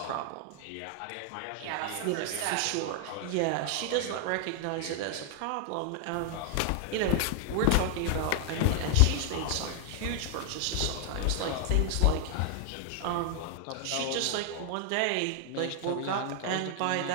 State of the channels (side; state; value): both; different; correlation 0.00